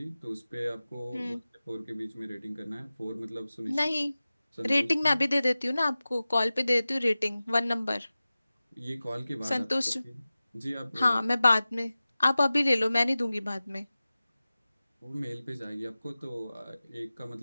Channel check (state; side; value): inverted; both; correlation -0.97